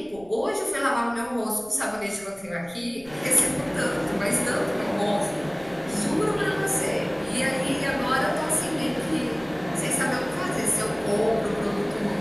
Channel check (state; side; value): noise; right; rumble, 24 dB below the sound